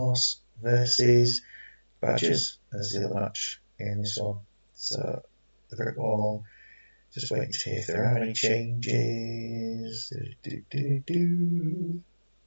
versus Badgers as the other match in this one. So, the brick wall. Just waiting to hear if there are any changes.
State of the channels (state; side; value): inverted; both; correlation -1.00